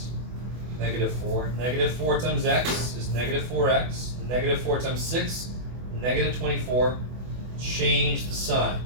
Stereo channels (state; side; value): late; left; 24 ms